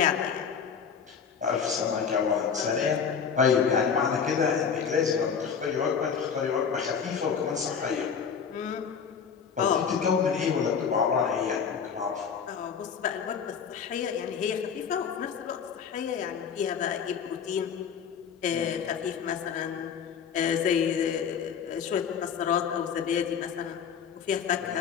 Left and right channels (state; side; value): quieter; right; 6.9 dB